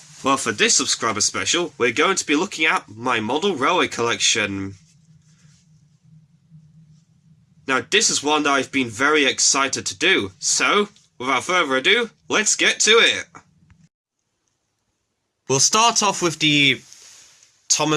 Well, for this subscriber special, we're going to be looking at my model railway collection. Now, this is one that I've been very excited to do, so, without further ado, let's get to it! We'll start off with the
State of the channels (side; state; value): both; identical; correlation 1.00